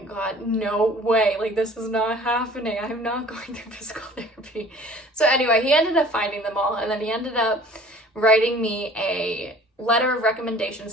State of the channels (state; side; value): normal; both; correlation 0.48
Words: god, no way, like this is not happening. I'm not going through physical therapy. So anyway, he ended up finding them all, and then he ended up writing me a letter of recommendation